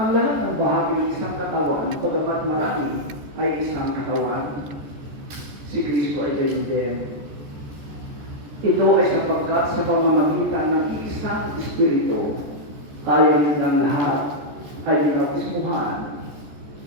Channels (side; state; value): left; late; 14 ms